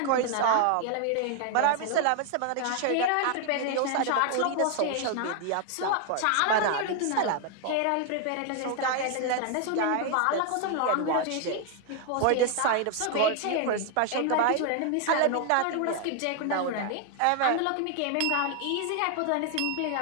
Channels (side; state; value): both; different; correlation 0.00